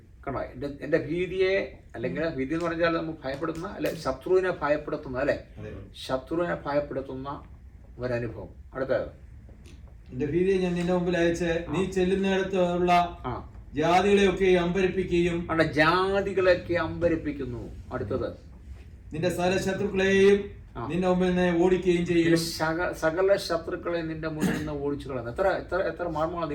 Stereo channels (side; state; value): both; identical; correlation 1.00